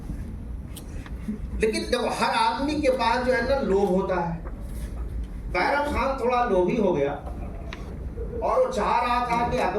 लेकिन जब हर आदमी के पास जो है ना लोभ होता है, बैरम खान थोड़ा लोभी हो गया और वो चाह रहा था कि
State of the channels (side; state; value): both; identical; correlation 1.00